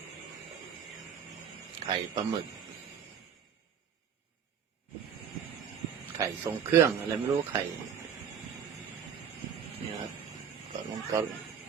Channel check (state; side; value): quieter; left; 7.8 dB